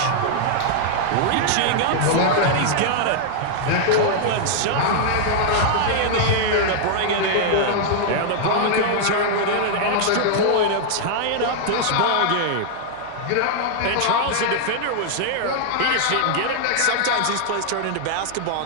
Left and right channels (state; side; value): different; both; correlation -0.01